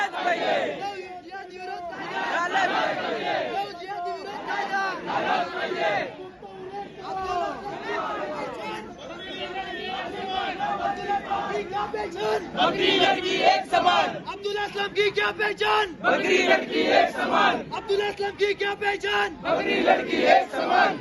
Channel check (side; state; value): both; identical; correlation 1.00